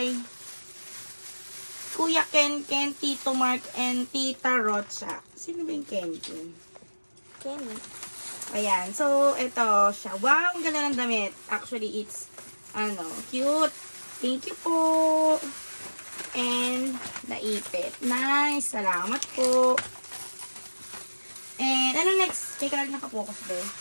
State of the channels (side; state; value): both; inverted; correlation -1.00